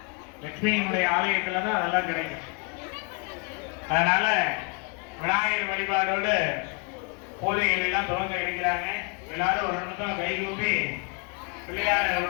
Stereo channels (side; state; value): right; quieter; 33.3 dB